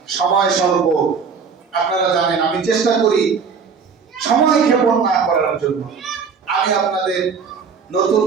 সময় স্বল্প, আপনারা জানেন আমি চেষ্টা করি সময় ক্ষেপণ না করার জন্য। আমি আপনাদের নতুন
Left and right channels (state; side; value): quieter; left; 5.8 dB